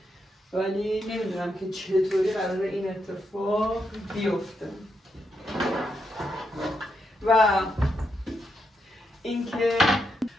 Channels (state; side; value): normal; both; correlation 0.82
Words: ولی نمیدونم که چطوری قراره این اتفاق بیفته. و اینکه